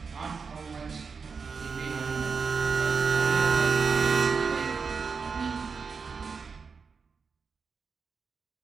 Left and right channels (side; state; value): left; quieter; 5.4 dB